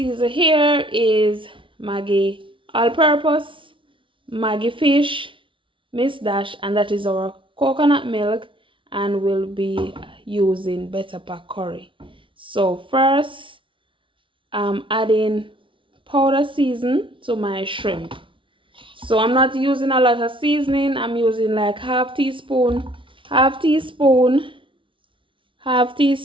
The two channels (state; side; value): late; left; 0.25 ms